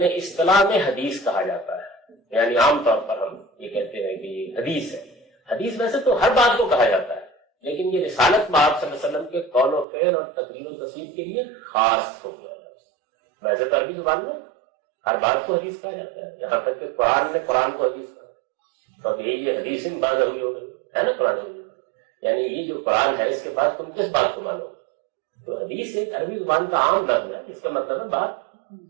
اصطلاح میں حدیث کہا جاتا ہے، یعنی عام طور پر ہم یہ کہتے ہیں کہ یہ حدیث ہے۔ حدیث ویسے تو ہر بات کو کہا جاتا ہے، لیکن یہ رسالت میں آپ صلی اللہ علیہ وسلم کے قول و فعل اور تقریر و تصویر کے لیے خاص ہو گیا لفظ۔ ویسے تو عربی زبان میں ہر بات کو حدیث کہا جاتا ہے، یہاں تک کہ قرآن نے قرآن کو حدیث کہا، تو اب یہ حدیث میں بات ہوئی ہوگی ہے نا قرآن میں، یعنی یہ جو قرآن ہے اس کے بعد تم کس بات کو مانو؟ تو حدیث ایک عربی زبان کا عام لفظ ہے جس کا مطلب ہے بات،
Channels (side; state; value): left; drops out; at 9.9 s